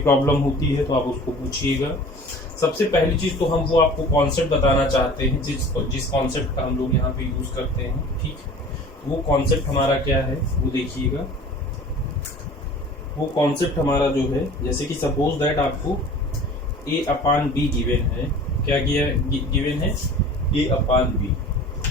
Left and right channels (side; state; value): both; normal; correlation 0.43